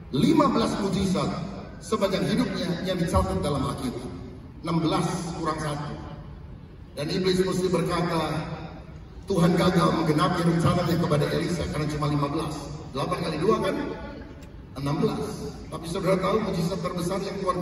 15 mujizat sepanjang hidupnya yang dicatat dalam Alkitab. 16 kurang 1. Dan iblis mesti berkata, Tuhan gagal menggenapi rencananya kepada Elisa karena cuma 15. 8 kali 2 kan 16. Tapi saudara tahu mujizat terbesar yang Tuhan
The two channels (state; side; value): identical; both; correlation 1.00